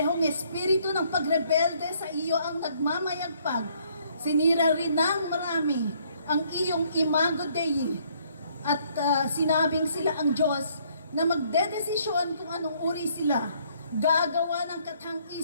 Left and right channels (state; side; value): inverted; both; correlation -0.66